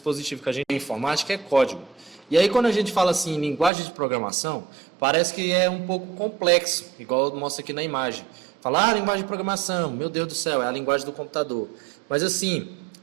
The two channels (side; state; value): left; drops out; at 3.7 s